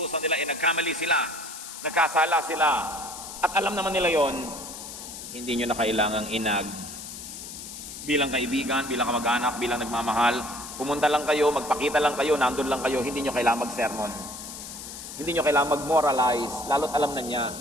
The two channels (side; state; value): left; noise; hiss, 11 dB below the sound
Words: nila ay nagkamali sila, nagkasala sila, at alam naman nila yon, hindi nyo na kailangang inag. Bilang kaibigan, bilang kamag-anak, bilang nagmamahal, pumunta lang kayo, magpakita lang kayo, nandun lang kayo, hindi nyo kailangang mag-sermon. Hindi nyo kailangang mag-moralize, lalo't alam na niya,